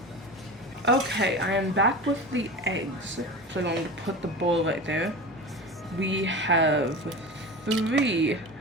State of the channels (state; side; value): normal; both; correlation 0.30